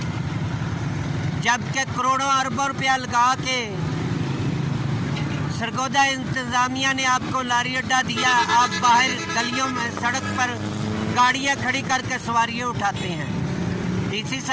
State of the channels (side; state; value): both; identical; correlation 1.00